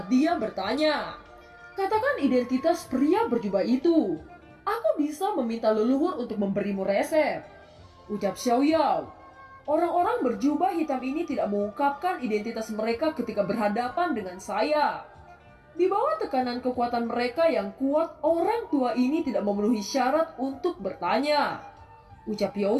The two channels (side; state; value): both; identical; correlation 1.00